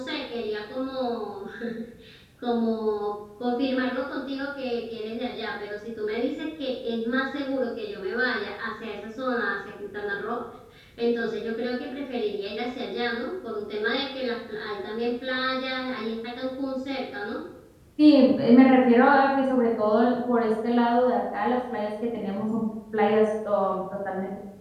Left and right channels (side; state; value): both; identical; correlation 1.00